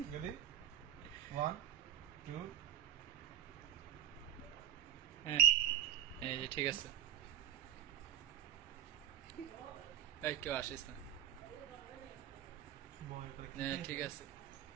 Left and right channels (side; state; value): left; quieter; 10.1 dB